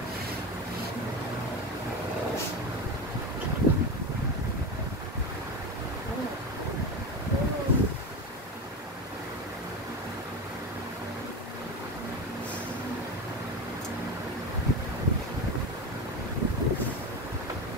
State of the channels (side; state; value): both; normal; correlation 0.22